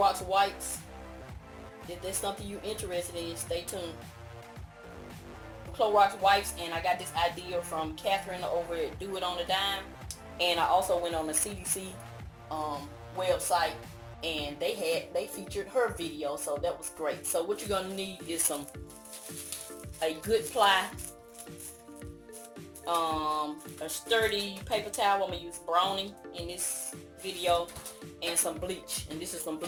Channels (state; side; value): identical; both; correlation 1.00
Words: wipes. If there's something you're interested in, stay tuned. Clorox wipes, and I got this idea from Catherine over at Do It on a Dime. And I also went on the CDC website, and they featured her video, so that was great. So what you're going to need is a good ply, a sturdy paper towel. I'm gonna use Brownie in this video, and some bleach. And this is some